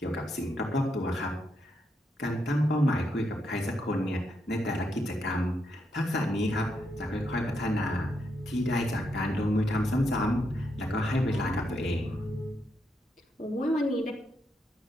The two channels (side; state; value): both; normal; correlation 0.80